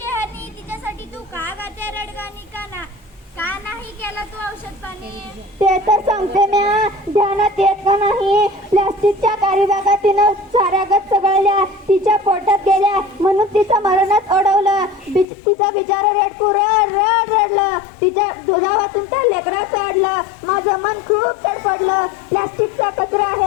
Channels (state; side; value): drops out; right; at 15.2 s